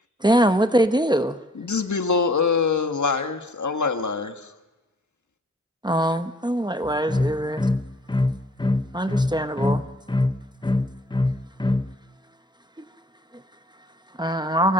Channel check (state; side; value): normal; both; correlation 0.59